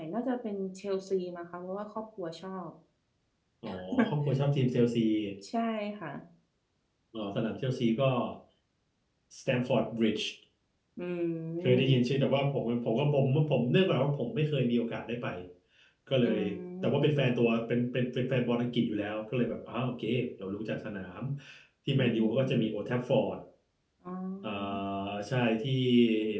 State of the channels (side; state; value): both; identical; correlation 1.00